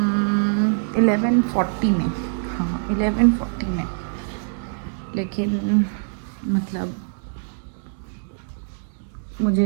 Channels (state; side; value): silent; left; digital silence